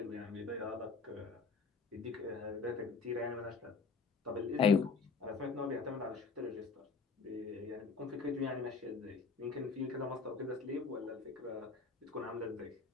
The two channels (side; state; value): right; quieter; 4.8 dB